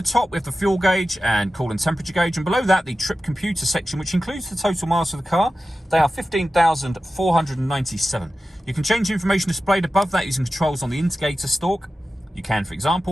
top, we have the fuel gauge and coolant temperature gauge. And below that, the trip computer section, which includes the total miles of the car. They are 15,497. You can change the information displayed above that using controls on the indicator stalk. You can, for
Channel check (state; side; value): normal; both; correlation 0.94